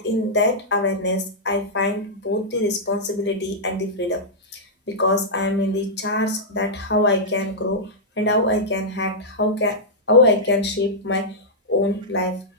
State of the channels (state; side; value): normal; both; correlation -0.09